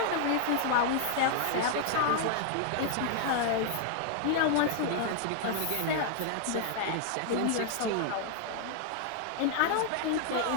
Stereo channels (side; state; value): both; different; correlation 0.00